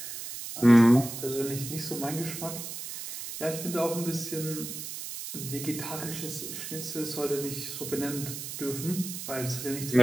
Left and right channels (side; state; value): right; noise; hiss, 8 dB below the sound